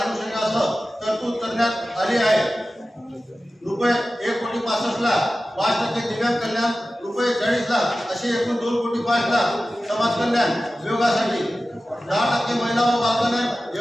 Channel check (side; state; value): both; normal; correlation 0.95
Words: तरतूद करण्यात आली आहे. रुपये 1,65,00,000 5% दिव्यांग कल्याण, रुपये 40,00,000 असे एकूण 2,05,00,000 समाज कल्याण विभागासाठी, 10% महिला व बालकल्याण